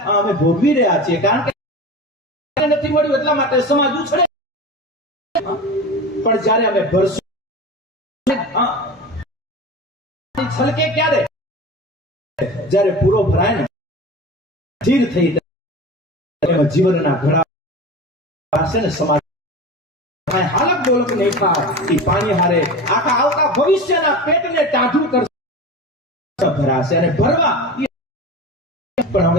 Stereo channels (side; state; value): both; normal; correlation 0.31